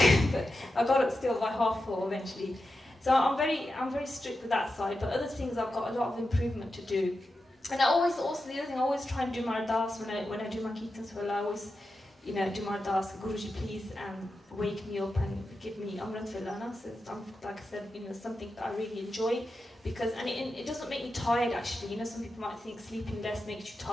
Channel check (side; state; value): both; normal; correlation 0.90